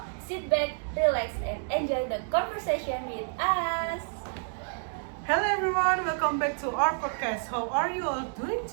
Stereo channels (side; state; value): left; silent; digital silence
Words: sit back, relax, and enjoy the conversation with us. Hello everyone, welcome back to our podcast. How are you all doing